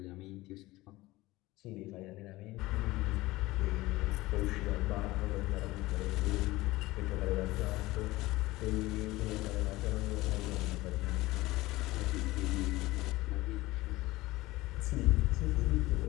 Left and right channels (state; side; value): quieter; right; 19.1 dB